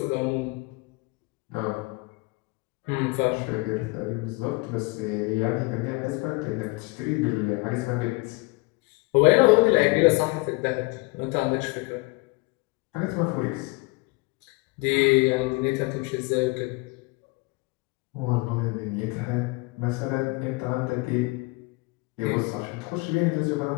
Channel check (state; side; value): quieter; right; 25.7 dB